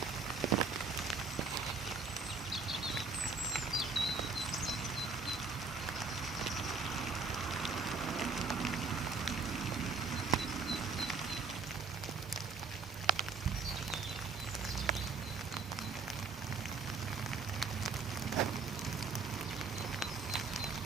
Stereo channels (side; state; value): left; quieter; 4.6 dB